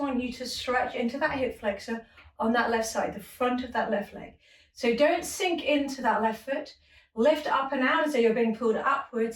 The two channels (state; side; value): identical; both; correlation 1.00